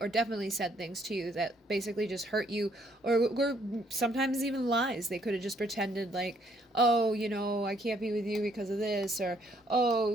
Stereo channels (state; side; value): normal; both; correlation 0.68